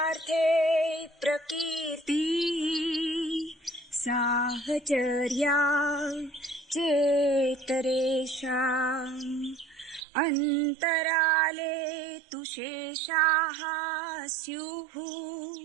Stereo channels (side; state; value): left; drops out; at 10.0 s